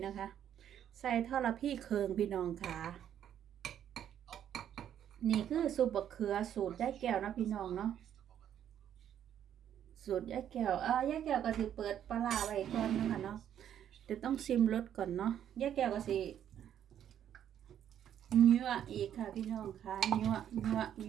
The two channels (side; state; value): left; quieter; 10.0 dB